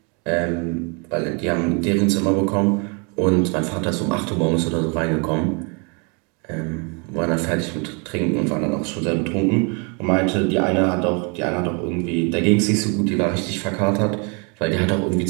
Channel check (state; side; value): quieter; left; 34.0 dB